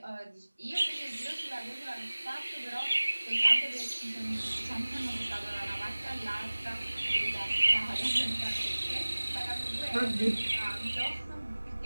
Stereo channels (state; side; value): inverted; both; correlation -1.00